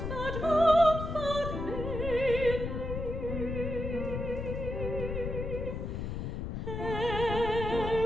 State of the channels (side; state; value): left; noise; rumble, 4 dB below the sound